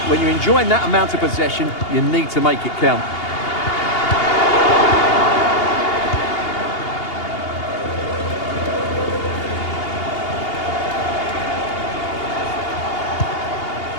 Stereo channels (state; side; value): late; right; 2.8 ms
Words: when you're enjoying that amount of possession, you need to make it count.